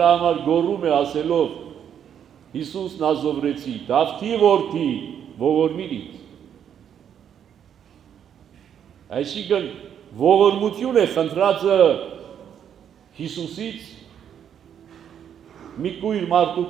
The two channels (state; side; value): quieter; left; 8.9 dB